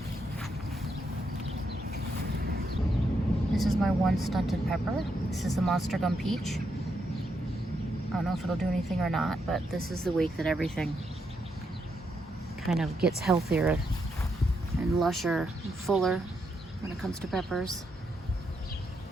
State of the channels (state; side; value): normal; both; correlation 0.80